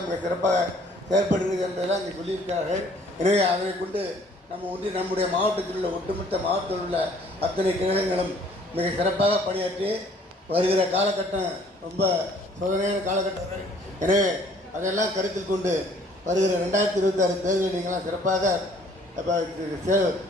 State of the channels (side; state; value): both; normal; correlation 0.57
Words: மிக சிறப்பாக செயல்படுகிறது என்பதெல்லாம் இங்கே சொல்லியிருக்கிறார்கள். எனவே அதை கொண்டு நம்முடைய மாவட்டத்தில் உள்ள ஒட்டுமொத்த மாவட்டத்தில் உள்ள அத்தனை கிழகங்களும் மிக சிறப்பாக பணியாற்றி வருகிற காலகட்டம் ரொம்ப சோதனையான காலகட்டங்கள். எனவே அதையெல்லாம் கருத்தில் கொண்டு வருகிற 2026 தேர்தலில் நீங்களாம் சிறப்பாக